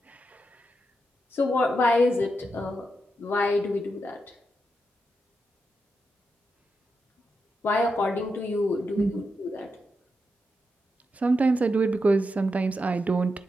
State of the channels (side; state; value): both; normal; correlation 0.86